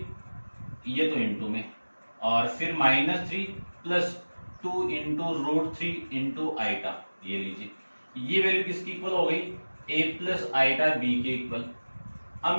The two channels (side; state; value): both; inverted; correlation -1.00